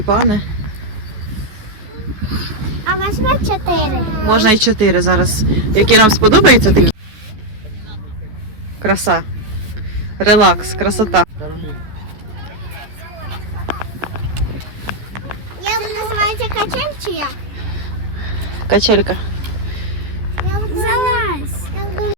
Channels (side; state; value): left; late; 14 ms